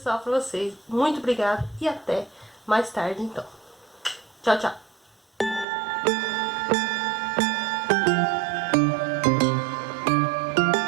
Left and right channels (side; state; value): left; drops out; at 5.7 s